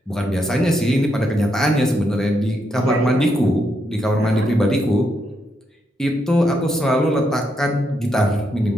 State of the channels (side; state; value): both; normal; correlation 0.79